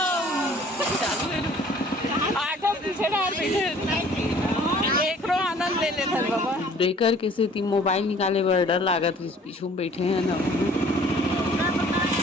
ऑटो पीछे डाल बैठे एक रो आनंद ले लेते बाबा। ब्रेकर के से मोबाइल निकाले बर डर लागत है, पीछू में बैठे हैं ना।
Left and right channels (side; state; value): both; normal; correlation 0.53